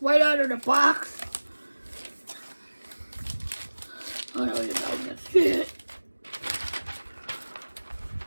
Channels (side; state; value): both; inverted; correlation -1.00